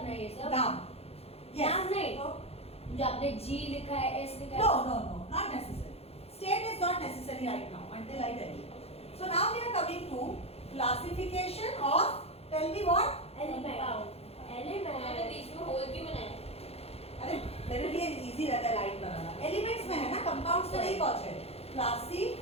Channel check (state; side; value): late; right; 0.29 ms